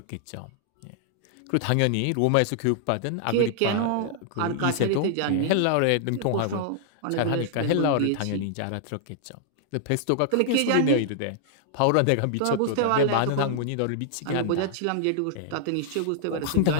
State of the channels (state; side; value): different; both; correlation -0.01